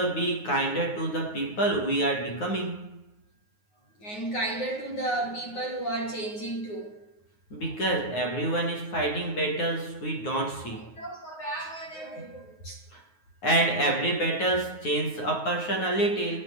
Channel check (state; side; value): late; right; 9.5 ms